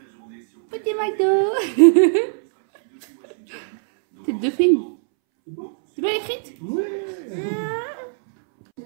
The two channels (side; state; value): left; silent; 65 dB below the other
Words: petit McDo. Tête de frime. C'est bien écrite?